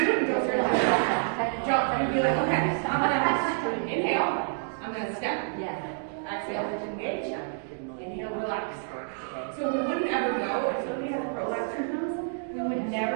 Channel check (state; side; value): silent; left; digital silence